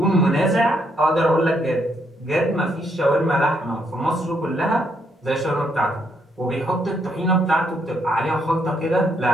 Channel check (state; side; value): normal; both; correlation 0.74